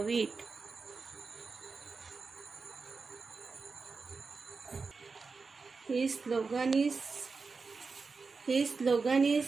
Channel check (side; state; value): left; quieter; 4.5 dB